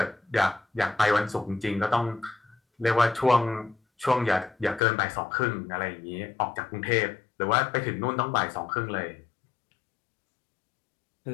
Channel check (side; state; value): right; drops out; at 4.8 s